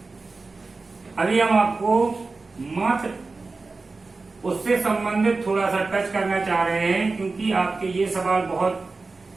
अभी हम आपको मात्र उससे संबंधित थोड़ा सा टच करना चाह रहे हैं, क्योंकि आपके ये सवाल बहुत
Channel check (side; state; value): left; quieter; 3.8 dB